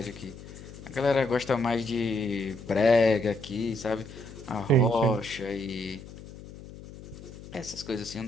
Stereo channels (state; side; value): noise; left; hum, 15 dB below the sound